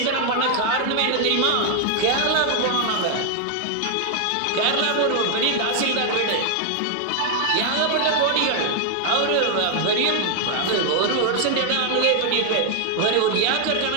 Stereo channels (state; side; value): different; both; correlation 0.00